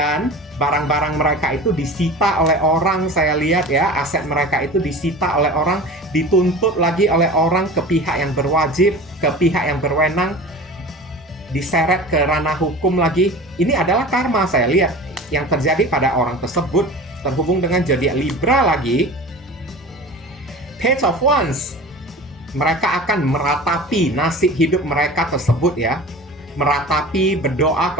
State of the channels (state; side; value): normal; both; correlation 0.37